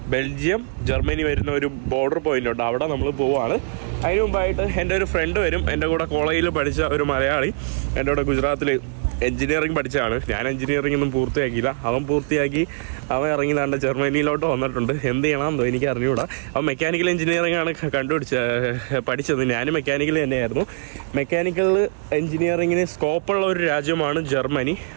ബെൽജിയം, ജർമ്മനി വരുന്ന ഒരു ബോർഡർ പോയിന്റ് ഉണ്ട്. അവിടെ നമ്മൾ പോവാണ്. അതിന് മുമ്പായിട്ട് എൻ്റെ ഒരു ഫ്രണ്ട് വരും. എൻ്റെ കൂടെ കോളേജിൽ പഠിച്ച ഒരു മലയാളി എൻ്റെ കൂടെ ഗുജറാത്തിൽ എഞ്ചിനീയറിംഗ് പഠിച്ചതാണ്. ഞാൻ എഞ്ചിനീയറിംഗ് ഒന്നും പൂർത്തിയാക്കിയില്ല. അവൻ പൂർത്തിയാക്കി അവൻ ഇറങ്ങി താണ്ട ജർമ്മനിയിലോട്ട് വന്നിട്ടുണ്ട്. എന്ത് ചെയ്യണമെന്നോ എനിക്ക് അറിഞ്ഞുകൂടാ. അവൻ മെക്കാനിക്കൽ എഞ്ചിനീയറിംഗ് ആണ് പഠിച്ചത്. ഞാനും മെക്കാനിക്കൽ തന്നെയായിരുന്നു. മെക്കാനിക്കൽ എഞ്ചിനീയറിങ്ങിന് സ്കോപ്പുള്ള ഒരു രാജ്യമാണ് ജർമ്മനി.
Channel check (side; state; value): left; silent; digital silence